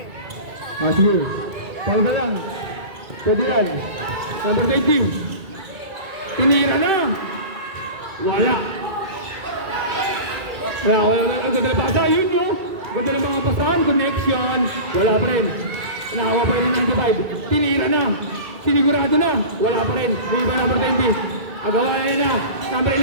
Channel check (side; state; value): left; late; 2.3 ms